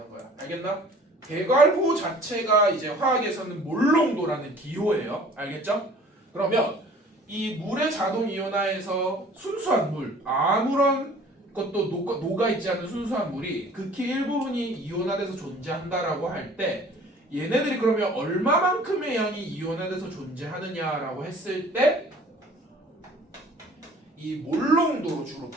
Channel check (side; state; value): both; normal; correlation 0.50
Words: 거야. 알겠나? 대괄호 자체가 이제 화학에서는 몰 농도라는 기호예요. 알겠죠? 그러면 이 물의 자동 이온화에서 순수한 물, 아무런 것도 녹아 있지 않은 순수한 물이 극히 일부분이 이온화돼서 존재한다라고 할 때 얘네들이 그러면 얼마만큼의 양이 이온화돼서 존재하느냐라고 했을 때 이 몰 농도로 주로